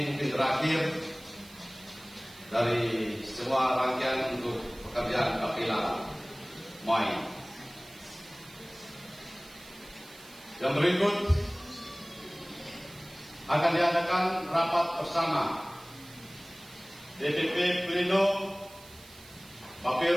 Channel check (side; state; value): right; noise; hiss, 21 dB below the sound